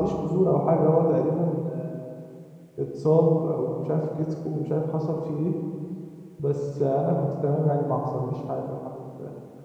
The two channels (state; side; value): identical; both; correlation 1.00